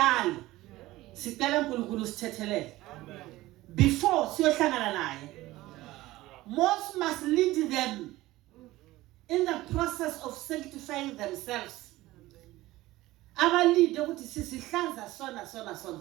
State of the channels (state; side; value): quieter; left; 17.6 dB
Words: sicela uNkulunkulu sithethelele before siyohlangana naye. Most must lead them in the process of sanctifying themselves. Abalide ukuthi sisihlanza sona.